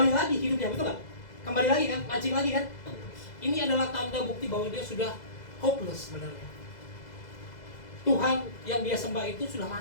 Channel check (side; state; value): right; late; 2.0 ms